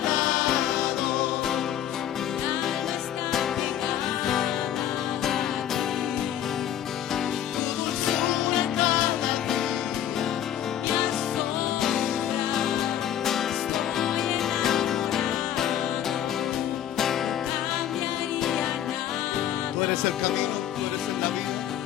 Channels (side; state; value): right; quieter; 10.8 dB